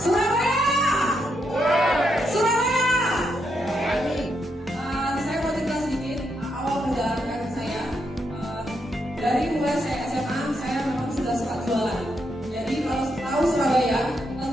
Surabaya. Saya mau cerita sedikit awal perjalanan karir saya. Dari mulai saya SMA, saya memang sudah suka jualan. Jadi kalau tahu Surabaya,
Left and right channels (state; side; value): normal; both; correlation 0.80